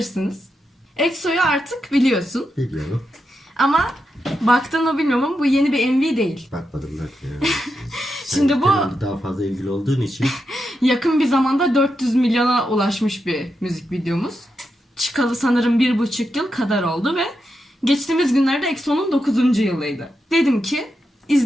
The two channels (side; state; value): both; normal; correlation 0.86